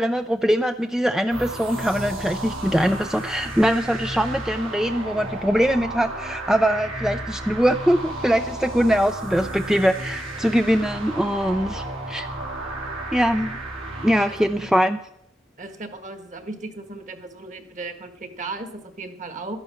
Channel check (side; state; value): both; normal; correlation 0.88